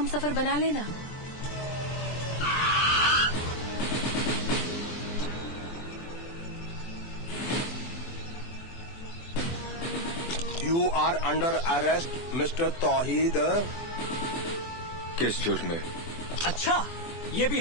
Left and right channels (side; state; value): right; late; 14 ms